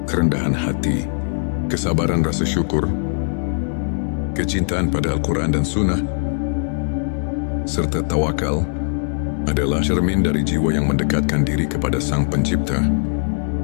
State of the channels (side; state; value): right; silent; digital silence